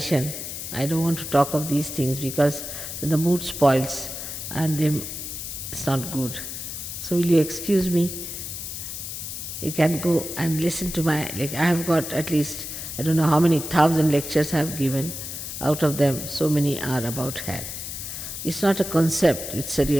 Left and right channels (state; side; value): noise; left; hiss, 7 dB below the sound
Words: I don't want to talk of these things because the mood spoils and it's not good. So will you excuse me? You can go and listen to I have got at least, I don't know how many 1,000 lectures I have given. Out of them, so many are about hell. It's not a concept, it's a